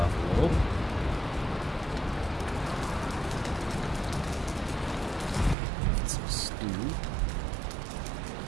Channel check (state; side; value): drops out; left; at 5.6 s